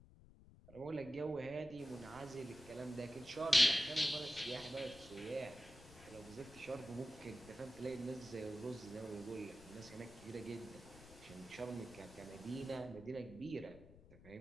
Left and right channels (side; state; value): left; noise; rumble, 20 dB below the sound